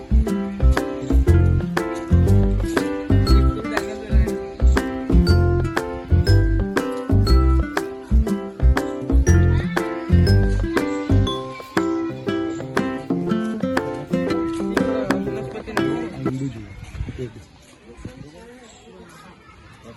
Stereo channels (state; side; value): identical; both; correlation 1.00